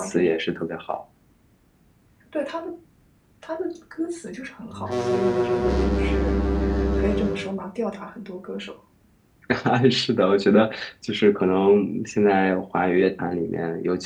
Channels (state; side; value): identical; both; correlation 1.00